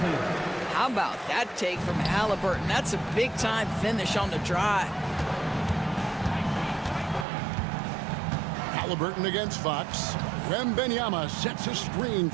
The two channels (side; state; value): left; drops out; at 7.2 s